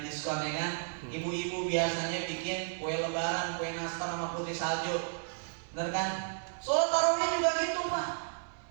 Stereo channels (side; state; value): left; silent; digital silence